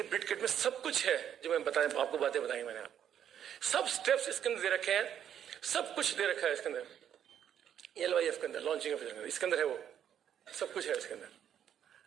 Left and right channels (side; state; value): left; quieter; 9.5 dB